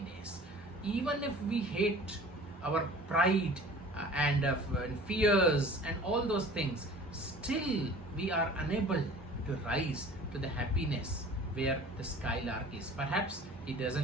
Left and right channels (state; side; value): normal; both; correlation 0.45